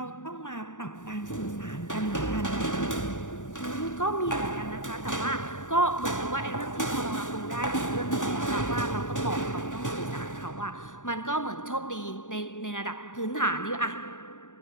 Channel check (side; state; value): right; late; 0.87 ms